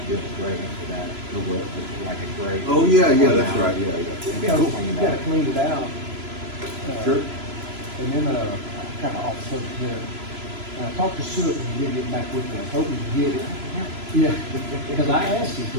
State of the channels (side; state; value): left; late; 3.0 ms